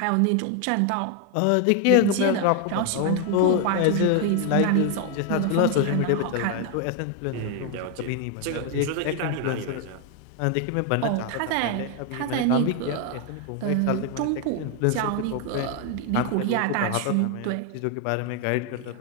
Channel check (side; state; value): both; different; correlation 0.01